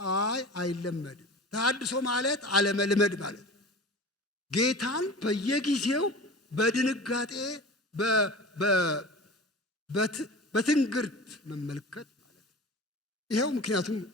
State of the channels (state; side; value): normal; both; correlation 0.35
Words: አይለመድም። ተሐድሶ ማለት አለመልመድ ማለት ነው። ጌታን በየጊዜው በድንጋጤ በትንግርት መመልከት ማለት ነው። ይኸው ምክንያቱም